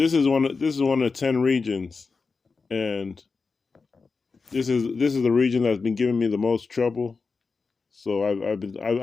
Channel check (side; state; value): right; quieter; 4.5 dB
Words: is one of 10 regions, and this is the region that's been giving me the most trouble. So